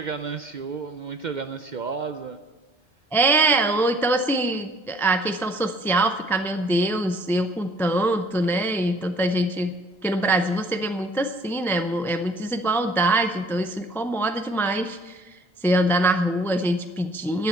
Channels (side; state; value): both; normal; correlation 0.58